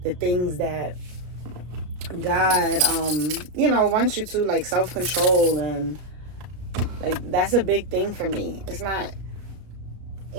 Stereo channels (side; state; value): left; late; 33 ms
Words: the things that God, wants you to, like self-control, and like, that's a big thing for me. It's not,